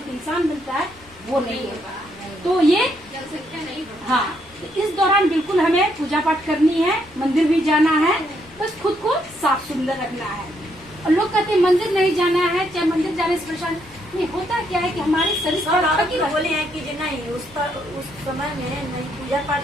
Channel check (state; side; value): normal; both; correlation 0.74